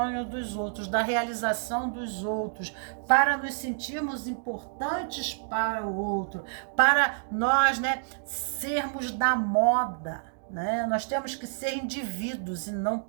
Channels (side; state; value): left; silent; digital silence